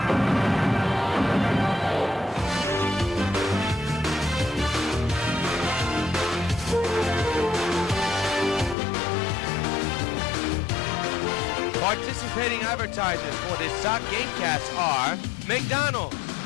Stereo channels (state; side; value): drops out; right; at 8.8 s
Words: Participating advertisers for this Sox Gamecast are McDonald's,